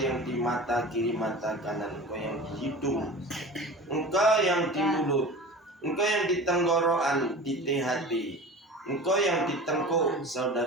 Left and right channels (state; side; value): normal; both; correlation 0.35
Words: di mata kiri, mata kanan, engkau yang di hidung, engkau yang di mulut, engkau yang di tenggorokan, di THT, engkau yang di tengkuk